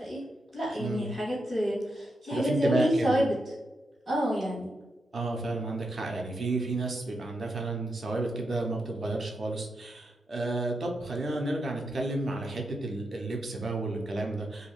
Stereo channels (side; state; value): both; normal; correlation 0.84